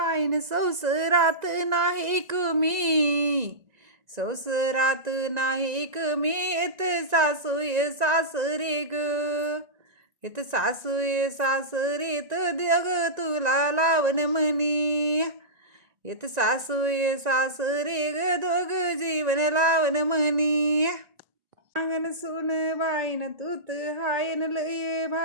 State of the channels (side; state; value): left; late; 1.9 ms